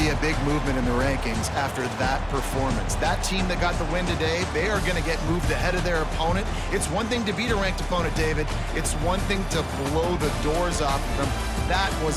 a big movement in the rankings after that performance. That team that got the win today, they are going to get moved ahead of their opponent. It's one thing to beat a ranked opponent, David. It's one thing to blow the doors off of them. That was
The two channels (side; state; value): both; identical; correlation 1.00